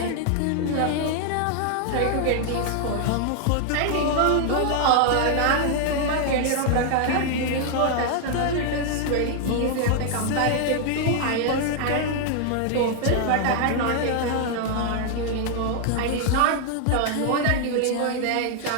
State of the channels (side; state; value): both; different; correlation 0.00